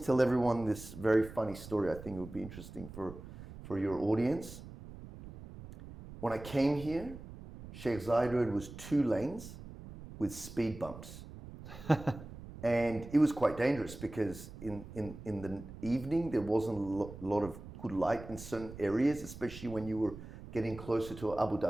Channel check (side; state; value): right; noise; rumble, 14 dB below the sound